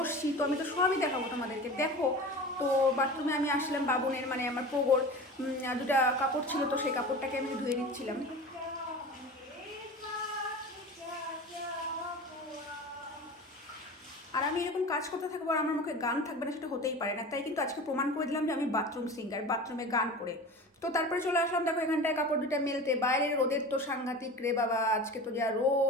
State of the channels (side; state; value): both; normal; correlation 0.34